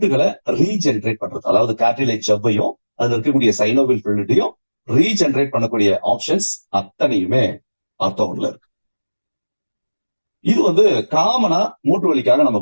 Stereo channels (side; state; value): both; inverted; correlation -1.00